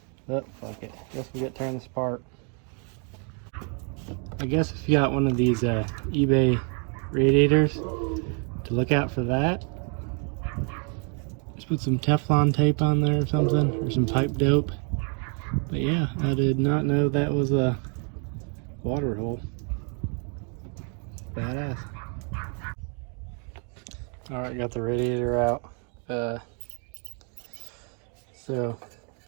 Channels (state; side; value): quieter; left; 39.2 dB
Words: But fuck it. Guess we get to turn this apart. I guess if you got one of these eBay radiators, to look out for that. Just put some Teflon tape on there or something, or some pipe dope. But yeah, I did not know that was a water hole. Badass. Alright, got the radiator out. So